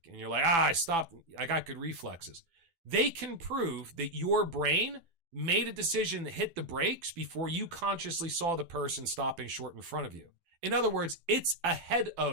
and you're like, I stopped, I got good reflexes. They can prove that your brain made a decision to hit the brakes before you consciously saw the person stopping short in front of you. In other words, it's ahead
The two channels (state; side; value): late; left; 12 ms